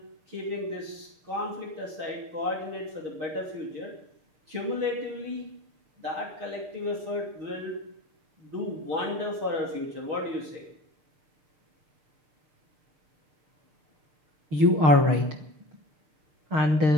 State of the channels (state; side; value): late; left; 6.4 ms